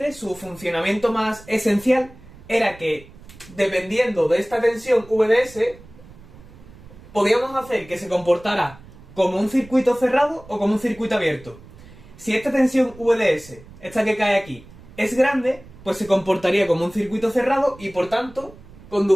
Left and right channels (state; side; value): noise; right; rumble, 21 dB below the sound